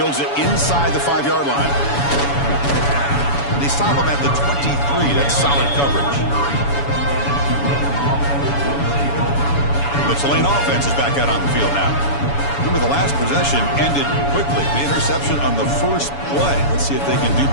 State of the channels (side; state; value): right; late; 7.1 ms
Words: it inside the 5-yard line. They stop him at the 23. That's solid coverage. The Tulane offense is back out on the field now. Remember, the last possession ended quickly. The interception on the first play. Let's see if they can do